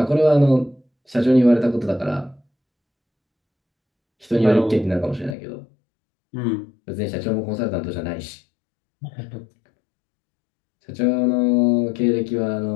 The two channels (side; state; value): right; drops out; at 5.4 s